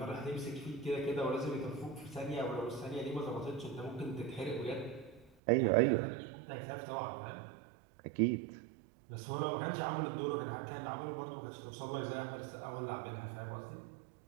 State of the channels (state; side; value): drops out; left; at 5.3 s